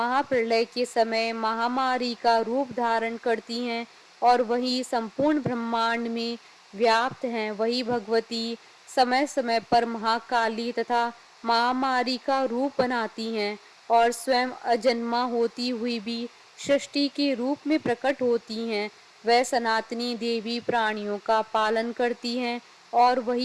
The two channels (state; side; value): identical; both; correlation 1.00